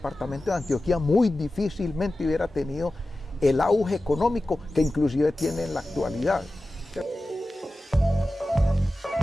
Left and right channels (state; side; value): normal; both; correlation 0.95